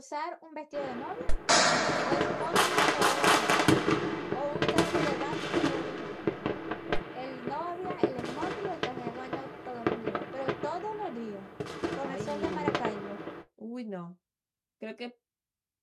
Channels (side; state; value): both; identical; correlation 1.00